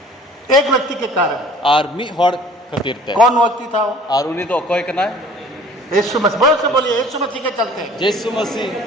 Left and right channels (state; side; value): normal; both; correlation 0.51